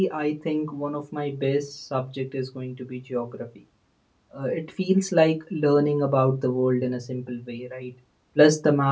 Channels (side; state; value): both; identical; correlation 1.00